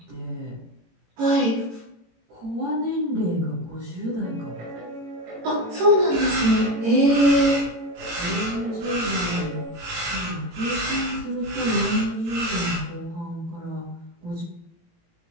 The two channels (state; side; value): late; left; 18 ms